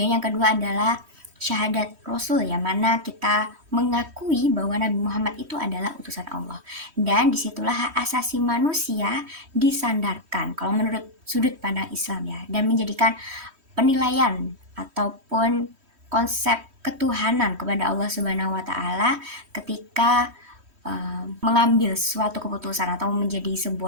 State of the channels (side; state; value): left; late; 3.1 ms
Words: yang kedua adalah syahadat Rasul, yang mana kita mengakui bahwa Nabi Muhammad itu adalah utusan Allah. Dan disitulah hak asasi manusia disandarkan kalau menurut sudut pandang Islam ya, dan menjadikan penilaian ataupun konsep ketuhanan kepada Allah Subhanahu wa Ta'ala ketika mengambil suatu keputusan atau menjadi